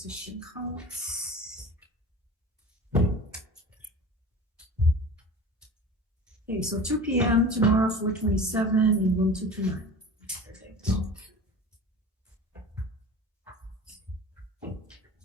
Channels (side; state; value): both; normal; correlation 0.36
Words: counts. Okay, so 2 p.m. tomorrow, 427 in room 229. Perfect.